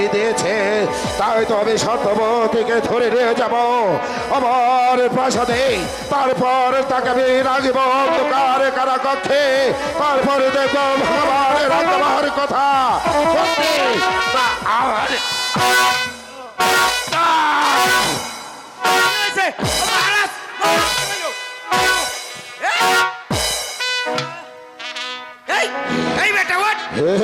দিয়েছে। তাই তো আমি সত্যবতীকে ধরে নিয়ে যাব আমার প্রাসাদে, তারপর তাকে আমি রাখব অন্ধকার কারাকক্ষে, তারপরে দেখব ভগবানের আত্মার কথা সত্যি না আমার।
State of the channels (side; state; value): both; identical; correlation 1.00